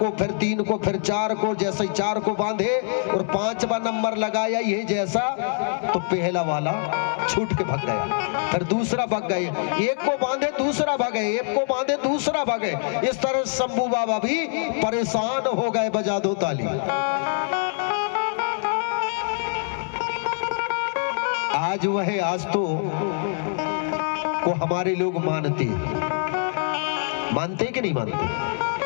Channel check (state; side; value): silent; right; 62 dB below the other